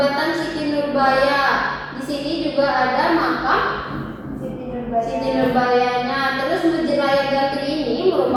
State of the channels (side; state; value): both; identical; correlation 1.00